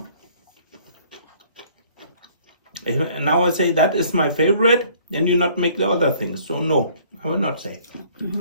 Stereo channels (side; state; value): both; inverted; correlation -0.57